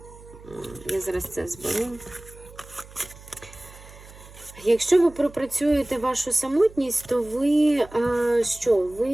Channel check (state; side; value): noise; right; hum, 20 dB below the sound